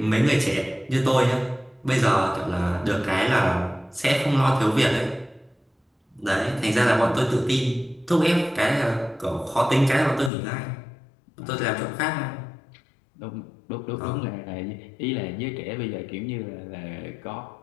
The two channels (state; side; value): drops out; right; at 10.3 s